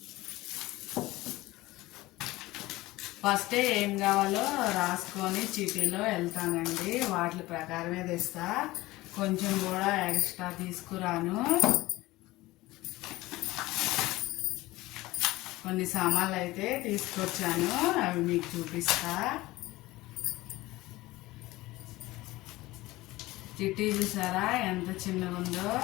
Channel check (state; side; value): quieter; right; 18.9 dB